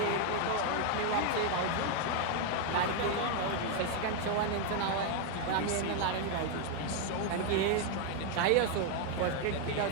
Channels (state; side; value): different; both; correlation 0.00